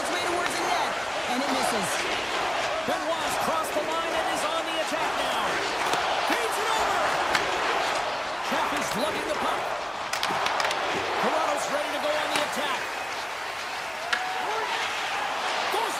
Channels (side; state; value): right; noise; hum, 29 dB below the sound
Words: way towards the net, and it misses. Benoit's crossed the line and is on the attack now. Feeds it over. Chappie's lugging the puck. Toronto's ready to go on the attack. Goes